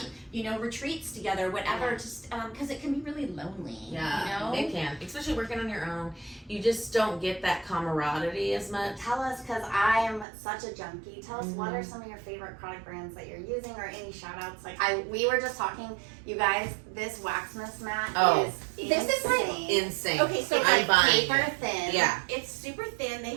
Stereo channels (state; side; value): drops out; left; at 10.2 s